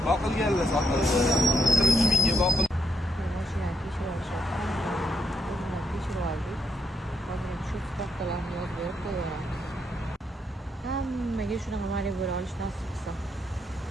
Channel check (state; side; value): normal; both; correlation 0.76